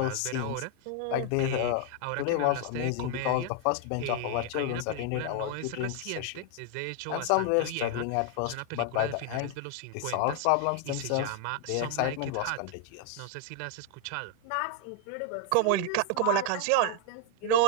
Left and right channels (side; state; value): both; different; correlation 0.00